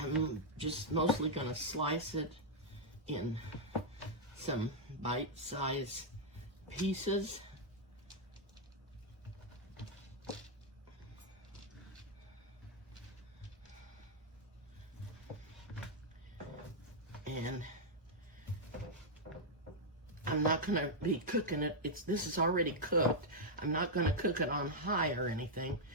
just mostly going to slice it in some bite-sized pieces. And I'm not going to be cooking it. This is already cooked. I'm not going to cook it on high or anything,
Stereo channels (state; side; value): normal; both; correlation -0.04